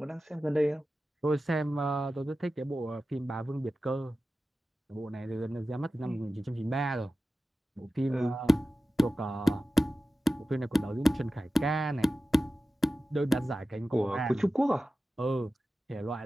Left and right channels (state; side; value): normal; both; correlation 0.94